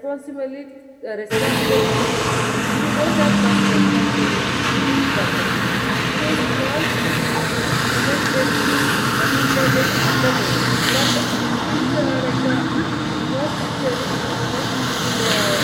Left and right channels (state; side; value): identical; both; correlation 1.00